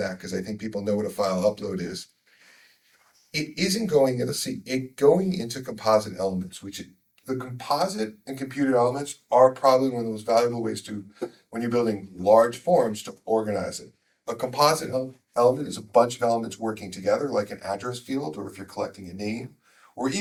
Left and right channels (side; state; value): both; identical; correlation 1.00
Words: because I think people know what a file upload is. It isn't going, let's see, going into composite elements, the composite and computed elements are probably one of the most valuable ways to, when you're building large forms, to organize it. A composite element is a bunch of elements working together, like an address field, or if you're collecting a name, or